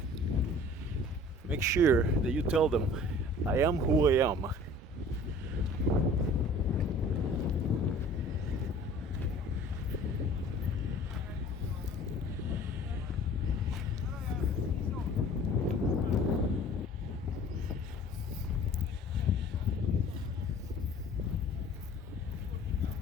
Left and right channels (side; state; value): both; normal; correlation 0.48